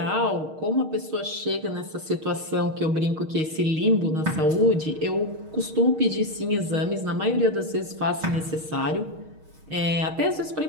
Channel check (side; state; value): left; late; 6.4 ms